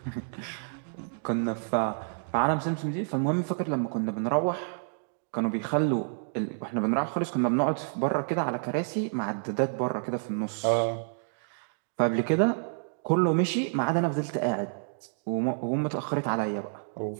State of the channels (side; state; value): left; silent; digital silence